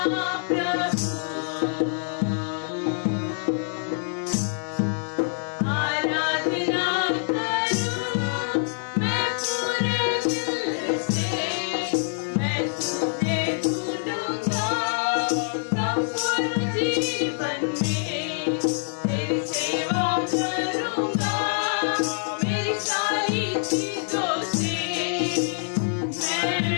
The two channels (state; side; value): silent; right; digital silence